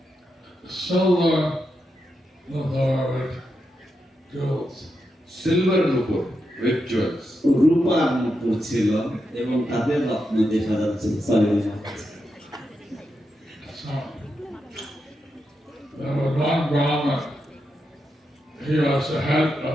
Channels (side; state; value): both; normal; correlation 0.86